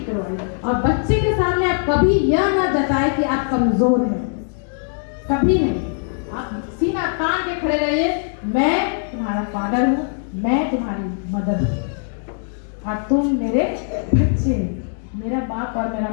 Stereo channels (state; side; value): silent; right; digital silence